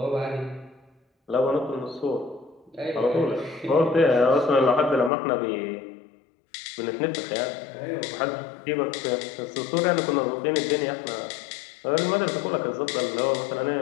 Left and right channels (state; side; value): drops out; right; at 5.1 s